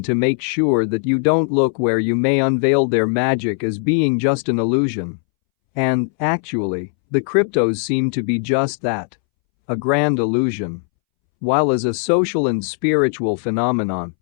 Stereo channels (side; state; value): right; silent; 65 dB below the other